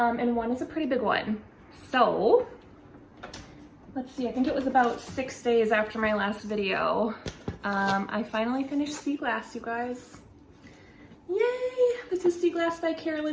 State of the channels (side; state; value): both; identical; correlation 1.00